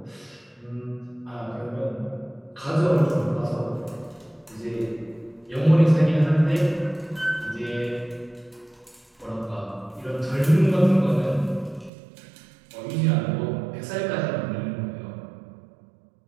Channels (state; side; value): drops out; left; at 11.9 s